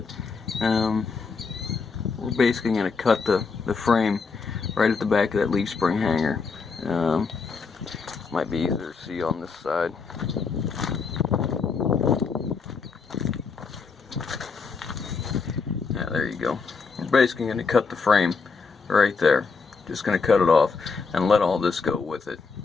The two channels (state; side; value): quieter; right; 5.0 dB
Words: we're basically going to cut the frame right at the back of that leaf spring hanger. Might be easier to see on this side. Yeah, there you go. We're basically going to cut the frame right there. Just going to cut it off and let all this go with it.